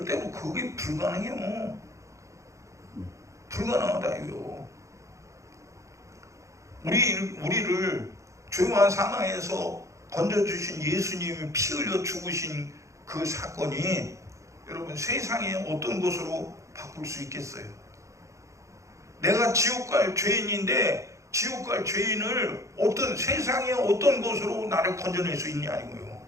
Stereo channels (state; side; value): late; left; 0.15 ms